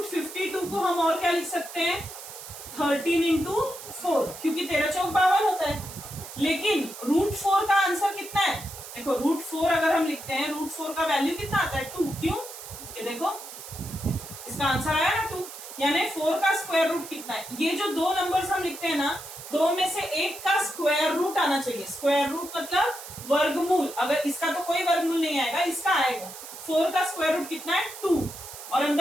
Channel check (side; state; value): right; noise; hiss, 13 dB below the sound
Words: को हम और क्या लिख सकते हैं, 13 into 4, क्योंकि 13 चौक 52 होता है। लेकिन √4 का आंसर कितना है, देखो √4 अगर हम लिखते हैं, √4 का वैल्यू कितना आता है 2। क्यों, ये देखो इसका आंसर आया ना 2, यानी 4 का स्क्वायर रूट कितना है। ये जो दो नंबर्स हम लिखते हैं ना, दो में से एक का स्क्वायर रूट आना चाहिए। स्क्वायर रूट मतलब वर्गमूल। अगर इसका तो कोई वर्गमूल नहीं आएगा, इसका आएगा। 4 का स्क्वायर रूट कितना है 2, और